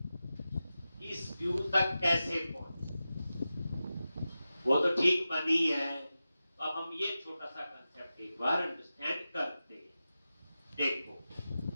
इस व्यू तक कैसे पहुंचे, वो तो ठीक बनी है। तो अब हम ये छोटा सा कंसेप्ट एक बार अंडरस्टैंड करते हैं। देखो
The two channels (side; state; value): both; inverted; correlation -0.93